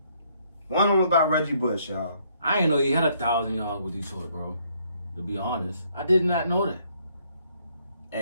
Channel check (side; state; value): both; inverted; correlation -0.68